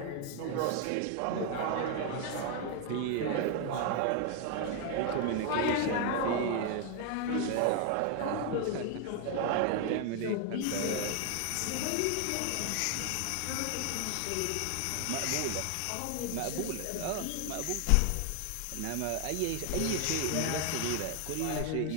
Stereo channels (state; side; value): different; both; correlation 0.01